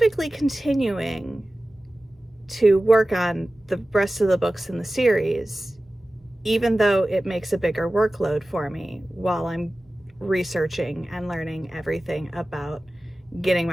continuing to work on the rest of the books in the series, even though it makes a bigger workload for me while I'm researching and learning everything about getting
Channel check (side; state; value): both; normal; correlation 0.96